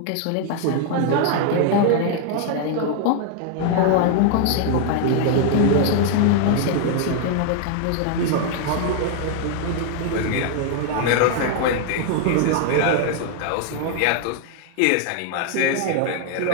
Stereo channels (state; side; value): different; both; correlation 0.00